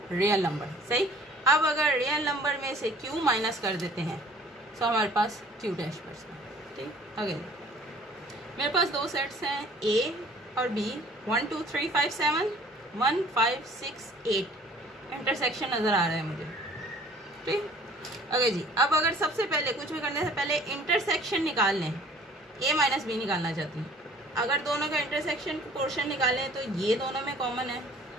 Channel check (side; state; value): both; normal; correlation 0.52